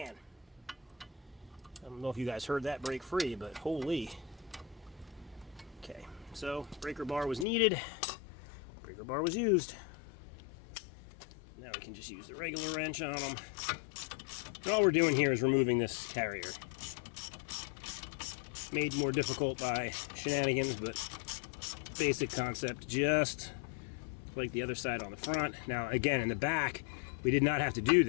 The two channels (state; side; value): drops out; right; at 7.5 s